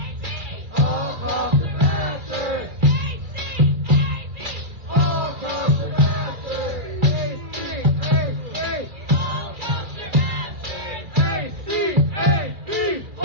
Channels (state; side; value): late; left; 2.5 ms